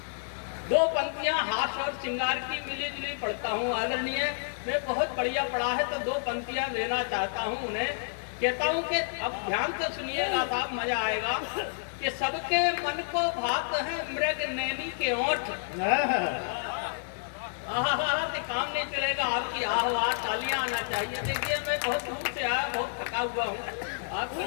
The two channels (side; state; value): right; silent; digital silence